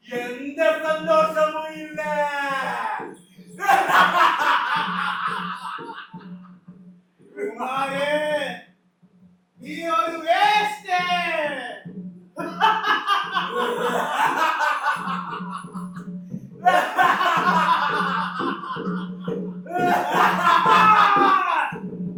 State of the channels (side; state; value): both; identical; correlation 1.00